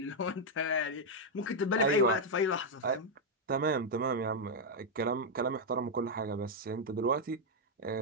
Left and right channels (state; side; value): normal; both; correlation -0.01